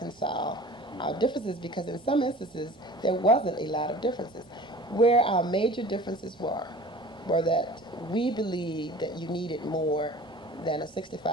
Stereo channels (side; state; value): both; normal; correlation 0.43